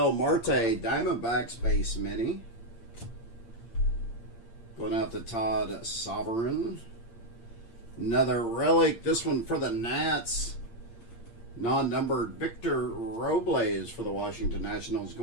Marte Diamondbacks base mini. Going out to Todd Sovereign. Another relic, this one for the Nats. Non-numbered Victor Robles for the Washington Nationals.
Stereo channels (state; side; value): late; right; 8.7 ms